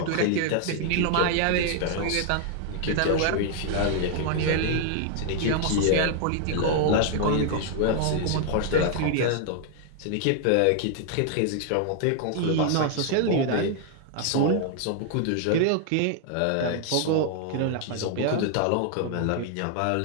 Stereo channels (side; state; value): both; different; correlation 0.00